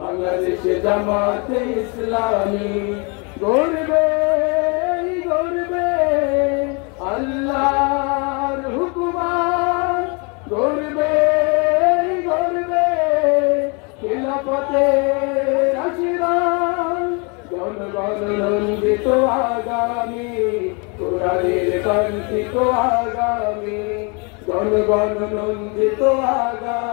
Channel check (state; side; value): quieter; right; 32.8 dB